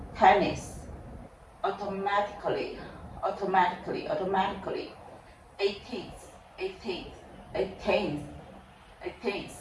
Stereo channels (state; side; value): identical; both; correlation 1.00